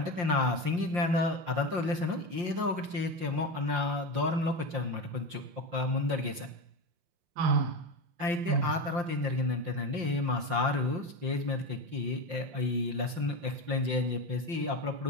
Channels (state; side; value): late; left; 5.7 ms